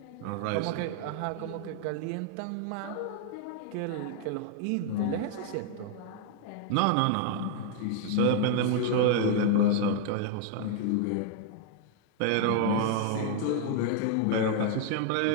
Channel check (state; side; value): different; both; correlation 0.00